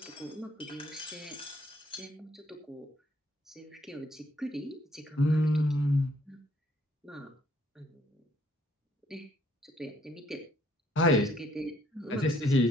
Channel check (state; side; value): normal; both; correlation 0.66